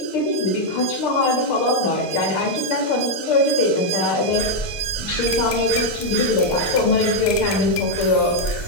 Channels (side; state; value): right; late; 6.6 ms